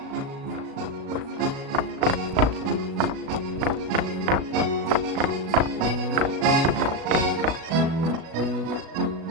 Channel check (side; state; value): left; late; 37 ms